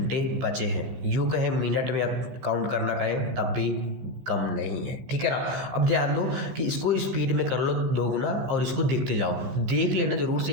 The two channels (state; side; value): late; left; 15 ms